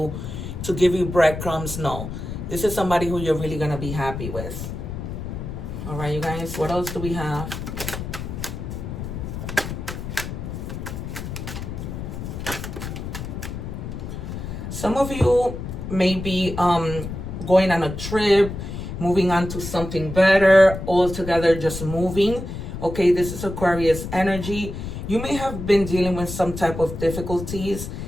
to give you breadcrumbs. No, this is somebody who you're really going to be happy with. All right, you guys, what else do we have? Some of you may be going on a trip, moving on to something better, altogether just moving. Okay, this is Aquarius energy. You may have been dealing with some type of difficulties,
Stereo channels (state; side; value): noise; left; rumble, 7 dB below the sound